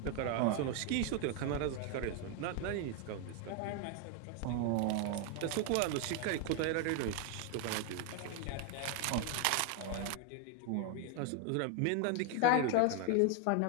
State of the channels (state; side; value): different; both; correlation 0.01